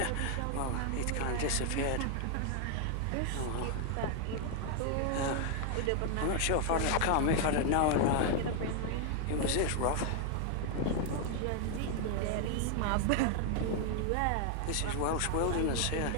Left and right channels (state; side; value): different; both; correlation 0.00